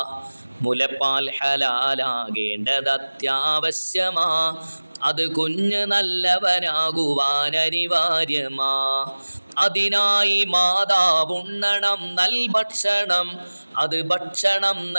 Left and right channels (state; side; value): inverted; both; correlation -1.00